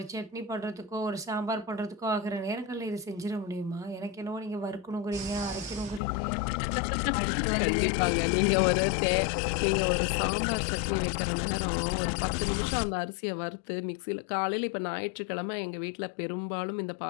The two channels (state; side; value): drops out; right; at 6.0 s